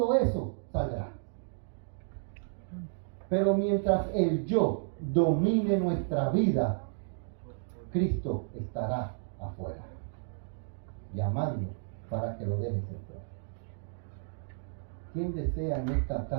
eso saldrá. Pero mientras el yo domine nuestra vida, Cristo estará afuera, llamando para que lo dejes entrar. ¿Quién desea en esta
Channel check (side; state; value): left; silent; digital silence